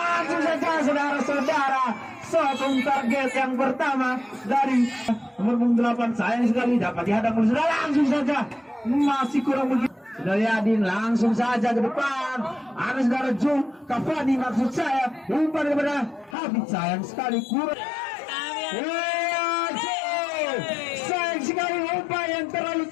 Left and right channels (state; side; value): drops out; right; at 16.4 s